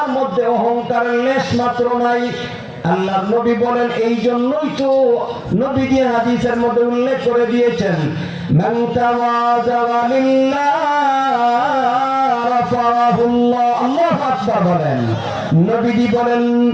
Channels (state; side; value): identical; both; correlation 1.00